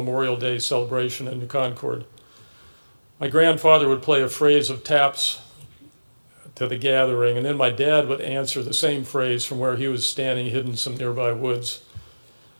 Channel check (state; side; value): inverted; both; correlation -1.00